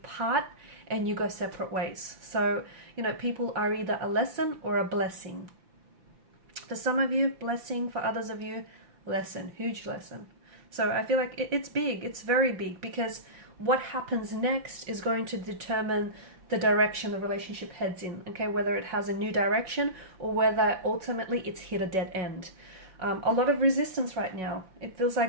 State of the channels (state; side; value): late; left; 5.8 ms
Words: and you go separate ways. So, you know, people are either a lesson or a blessing. For some of you, blessing. For others of you, lesson, huge lesson. So I feel like it's big, it's very big, because what happens next is going to determine the direction the relationship heads in, okay? Whether it has a new direction or whether ultimately it's hit a dead end. A lot of resistance right now. It feels